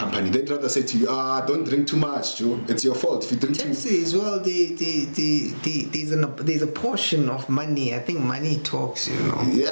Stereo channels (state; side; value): inverted; both; correlation -1.00